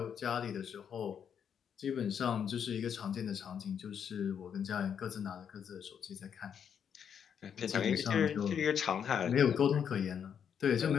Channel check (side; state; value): right; quieter; 7.9 dB